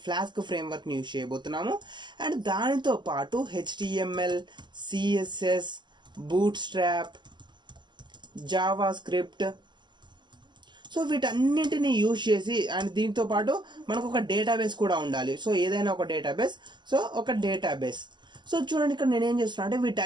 ఫ్రేమ్వర్క్ని యూజ్ చేయబోతున్నాము. అండ్ దానితో పాటు HTML, CSS, bootstrap, Java script, so వీటన్నింటినీ యూజ్ చేసి అండ్ దీంతో పాటు మనకు ఒక డేటాబేస్ కూడా ఉండాలి. సో ఏదైనా ఒక డేటాబేస్. సో చూడండి, ఇక్కడ నేనేం చేస్తున్నా అంటే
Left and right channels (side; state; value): left; late; 0.22 ms